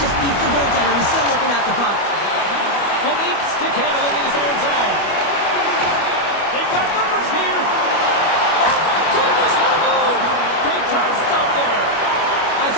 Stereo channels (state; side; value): late; right; 25 ms